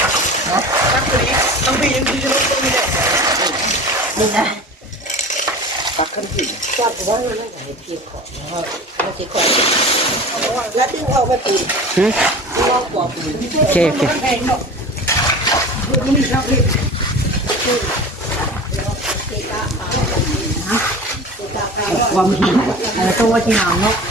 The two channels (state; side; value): normal; both; correlation 0.36